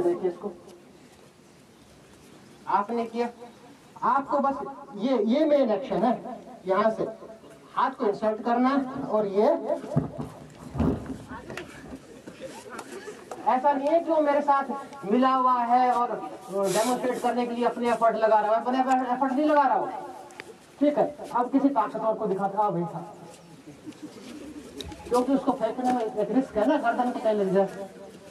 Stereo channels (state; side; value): identical; both; correlation 1.00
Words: देखिए इसको, आपने किया, आपको बस ये मेन एक्शन है, यहाँ से हाथ को इंसर्ट करना है, और ये ऐसा नहीं है कि वो मेरे साथ मिला हुआ है और डेमोन्स्ट्रेट करने के लिए अपने एफर्ट लगा रहा है, अपने एफर्ट नहीं लगा रहा हूँ, ठीक है। अब किसी ताकतवर को दिखाता भाई था, क्योंकि उसको फेंकने में एक रिस्क है ना, गर्दन को कहीं लग जाए,